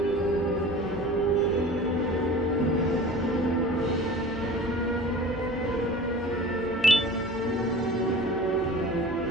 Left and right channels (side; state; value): both; normal; correlation 0.40